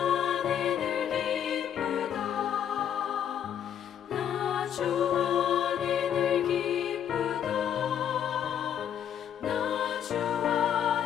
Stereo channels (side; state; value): right; quieter; 9.3 dB